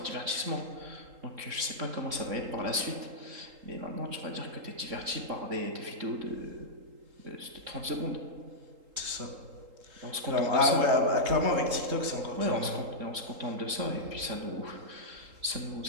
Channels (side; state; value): left; late; 3.8 ms